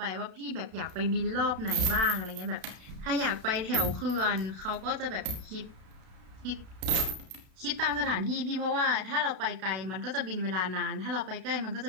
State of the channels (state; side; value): late; left; 32 ms